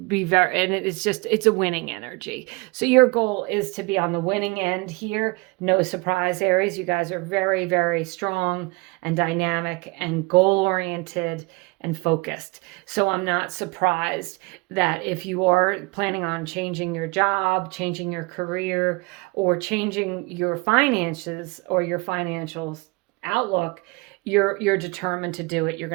a winning energy. So your goal is to be on the winning end here. No surprise, Aries. You guys are very, very strong and dynamic and goal-oriented and focused. So I'm not surprised that if you are planning on changing your job, changing your career, or changing your finances or your financial outlook, you're determined to do it. You're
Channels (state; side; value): quieter; left; 26.5 dB